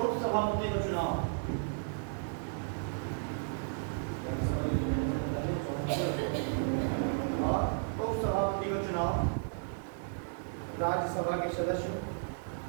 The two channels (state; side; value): silent; left; digital silence